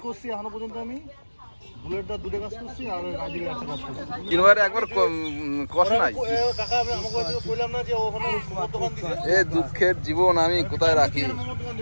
করছি এখনো পর্যন্ত। আমি বুলেটটা দুটো কাজ করছি আর রাজিকে একটা কাজ করছি। কিনবারে একবার কষ্ট নাই কাকা। আমি আমাকে কইলাম না যে ওখানে মোমো দোকান দিছে। এ দুঃখের জীবন আমি কোথায় রাখি।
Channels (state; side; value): inverted; both; correlation -1.00